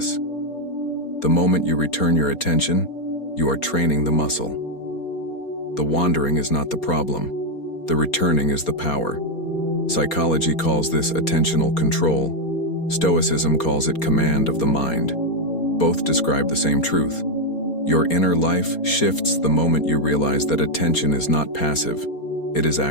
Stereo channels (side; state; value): right; late; 4.3 ms